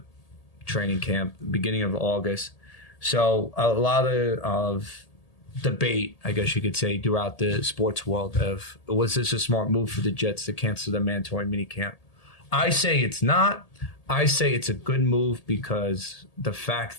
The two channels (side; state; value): right; late; 1.8 ms